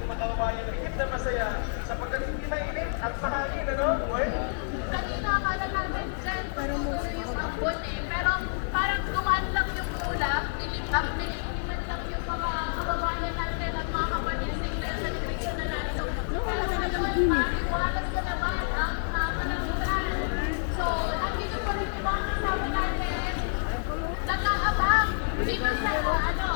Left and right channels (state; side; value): silent; right; 56 dB below the other